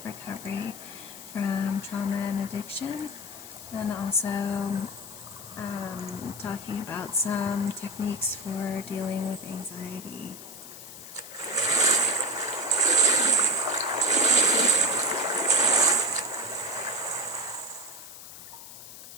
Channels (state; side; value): noise; left; hiss, 14 dB below the sound